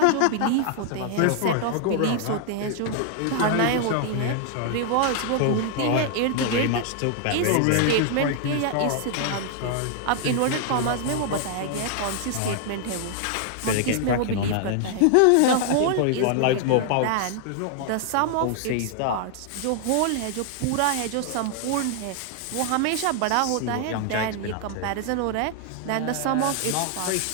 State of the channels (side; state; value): both; different; correlation 0.00